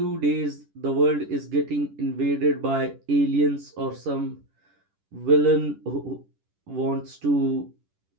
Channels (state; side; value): late; left; 10 ms